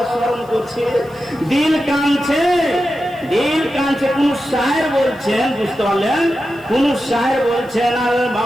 স্মরণ করছে, দিল কাঁদছে, দিল কাঁদছে। কোন শায়ের বলছেন, বুঝতে পারলেন? কোন শায়ের বলছেন আল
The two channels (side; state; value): left; noise; hiss, 29 dB below the sound